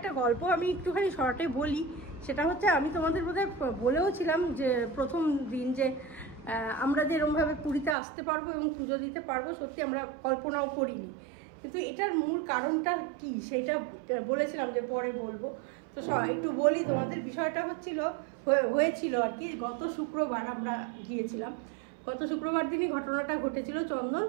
গল্প আমি একটুখানি শর্টে বলি। সেটা হচ্ছে, আমি তোমাদের বোধহয় বলেও ছিলাম যে প্রথম দিন যে আমরা যে এরকমভাবে পুরীতে আসতে পারবো এবং পুজো দিতে পারবো, সত্যি আমরা কল্পনাও করিনি। কিন্তু এটার মূল কারণটা কি সেটা বলেছিলাম যে পরে বলবো। তো একটু বলি তোমাদের, বিষয়টা হয়েছিল আর কি, গত শুক্রবার আমরা গিয়েছিলাম। গত শুক্রবার দিনই ঘটনাটা ঘটেছিল। চন্দন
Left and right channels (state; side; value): drops out; left; at 8.0 s